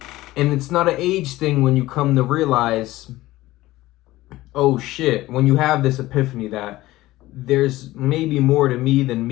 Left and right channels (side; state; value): right; quieter; 17.4 dB